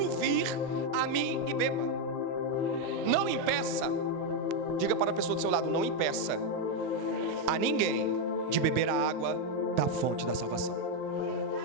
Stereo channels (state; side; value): late; right; 16 ms